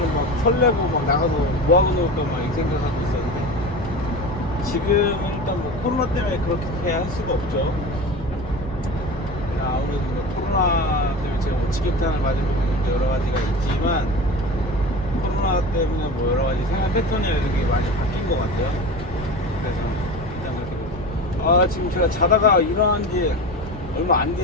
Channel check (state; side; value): normal; both; correlation 0.31